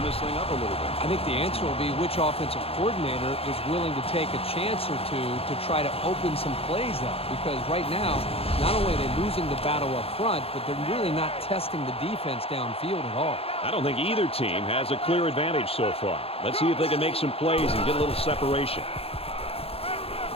this thing up a little bit. I think the answer will be which offensive coordinator is willing to take a chance or two to try to open some plays up. Because right now, not only are they losing the battle up front, but they're really not testing the defense downfield at all. I don't think either team has a clear advantage so far. Let's see if they can make some plays and get a little separation.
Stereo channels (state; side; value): late; right; 0.28 ms